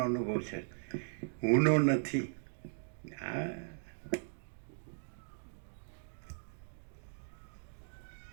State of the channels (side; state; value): left; silent; digital silence